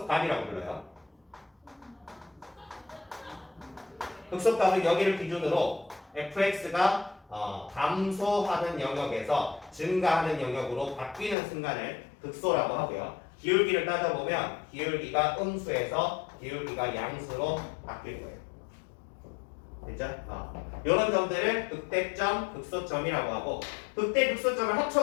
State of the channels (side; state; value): right; drops out; at 11.4 s